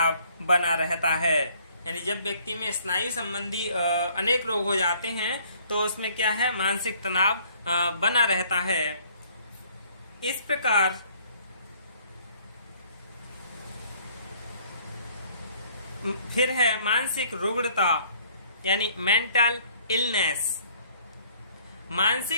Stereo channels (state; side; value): inverted; both; correlation -0.60